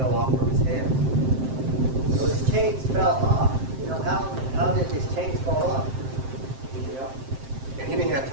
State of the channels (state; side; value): late; left; 7.6 ms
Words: off from his hands. So his chains fell off. You know, how did his chains fall off? You know? And he didn't have